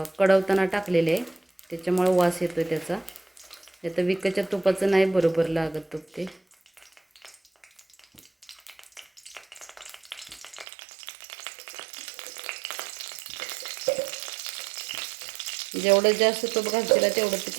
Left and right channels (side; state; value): left; drops out; at 10.7 s